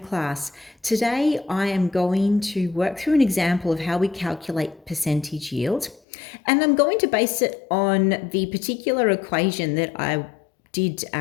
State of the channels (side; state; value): right; drops out; at 6.0 s